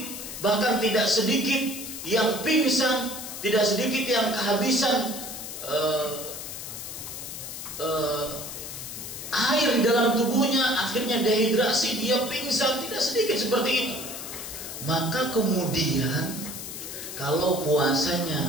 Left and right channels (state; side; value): noise; left; hiss, 9 dB below the sound